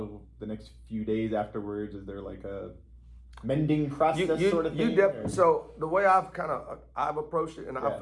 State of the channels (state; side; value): identical; both; correlation 1.00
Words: the next few days afterwards, is there like a mending process sort of thing? So the way I've approached it, and